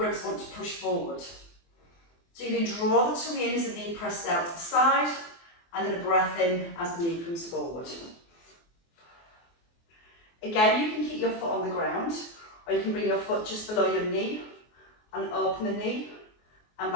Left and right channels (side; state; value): right; late; 24 ms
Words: want to push forward. So you can draw the tummy in as the knee pressed out to the side, and then a breath in as the knee comes forward. Again, you can keep your foot on the ground, or you can bring your foot just below your knee and open the knee and